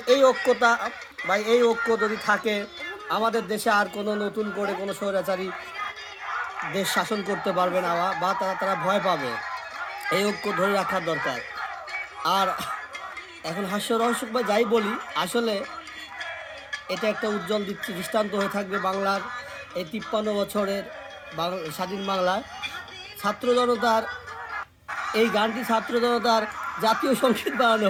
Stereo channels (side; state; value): both; identical; correlation 1.00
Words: এই ঐক্যতা বা এই ঐক্য যদি থাকে, আমাদের দেশে আর কোনো নতুন করে কোনো স্বৈরাচারী দেশ শাসন করতে পারবে না বা তারা ভয় পাবে। এই ঐক্য ধরে রাখার দরকার। আর এখন হাস্যরহস্য বা যাই বলি, আসলে এটা একটা উজ্জ্বল দৃষ্টান্ত হয়ে থাকবে বাংলার এই ৫৩ বছরের স্বাধীন বাংলায়। ছাত্র জনতার এই গানটি ছাত্র জনতার জাতীয় সঙ্গীত বানানো